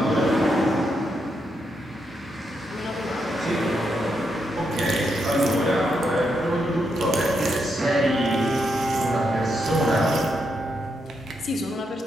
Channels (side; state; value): both; normal; correlation 0.81